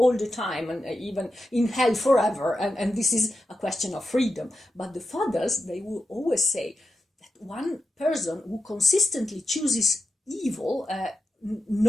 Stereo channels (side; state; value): both; normal; correlation 0.89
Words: the time, and even in hell forever, and this is a question of freedom. But the fathers, they will always say that one person who consistently chooses evil,